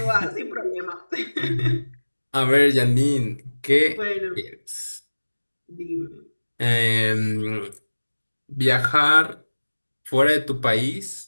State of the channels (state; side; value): inverted; both; correlation -1.00